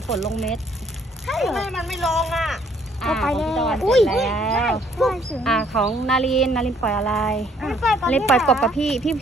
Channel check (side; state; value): both; normal; correlation 0.64